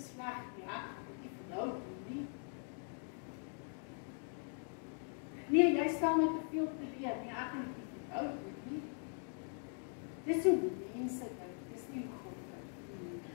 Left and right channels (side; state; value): right; silent; 50 dB below the other